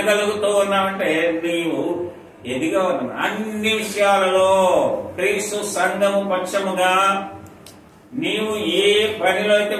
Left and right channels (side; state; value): both; identical; correlation 1.00